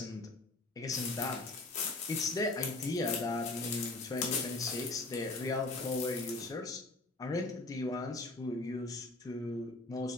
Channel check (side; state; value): right; quieter; 3.0 dB